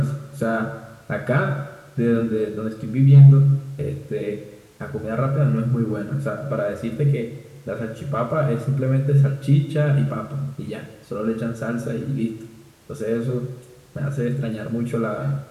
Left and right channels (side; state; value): both; identical; correlation 1.00